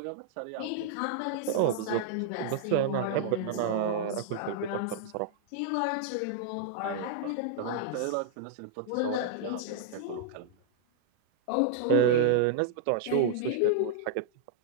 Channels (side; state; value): both; different; correlation -0.01